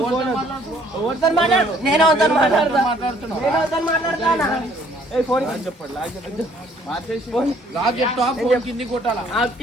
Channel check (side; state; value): both; normal; correlation 0.61